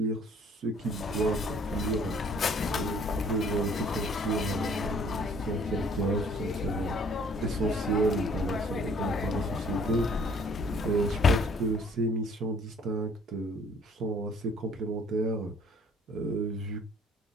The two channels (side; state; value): both; normal; correlation 0.57